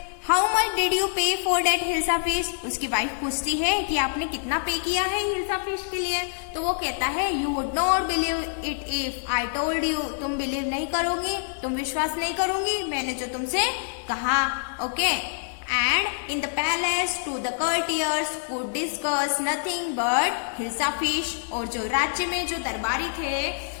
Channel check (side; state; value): right; silent; digital silence